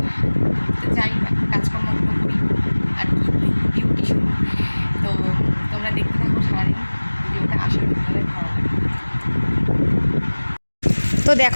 তো যাই কাজকর্মগুলো করি আর কি, ডিউটি শুরু। তো তোমরা দেখতে থাকো সারাদিন ভিডিওটা, আশা করি তোমাদের ভালো লাগে। তো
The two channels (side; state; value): both; inverted; correlation -1.00